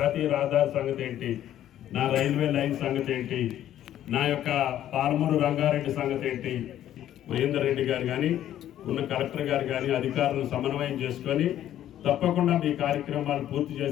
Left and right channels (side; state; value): right; quieter; 11.8 dB